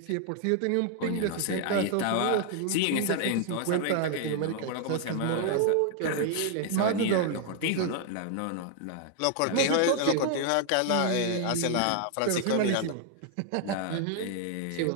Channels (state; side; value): different; both; correlation 0.00